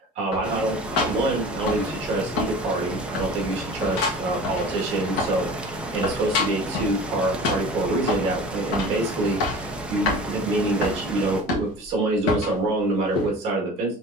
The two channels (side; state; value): both; normal; correlation 0.39